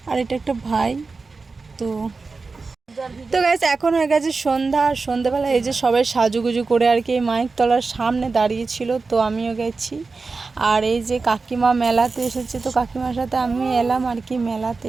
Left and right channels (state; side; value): quieter; left; 4.2 dB